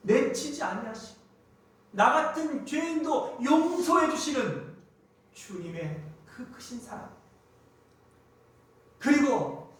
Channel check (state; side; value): identical; both; correlation 1.00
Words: 내치지 아니하시고 나 같은 죄인도 용서해 주시는 주님의 그 크신 사랑, 그리고